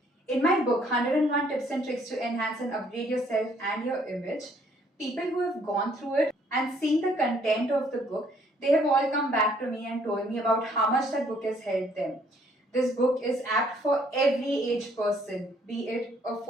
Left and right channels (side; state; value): both; normal; correlation 0.64